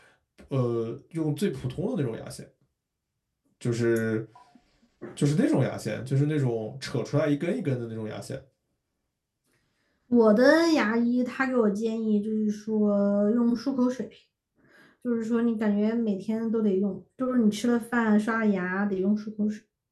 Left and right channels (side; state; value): both; identical; correlation 1.00